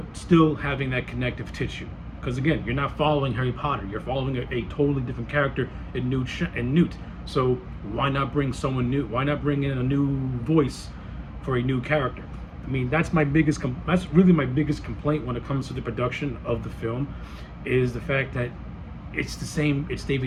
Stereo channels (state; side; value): identical; both; correlation 1.00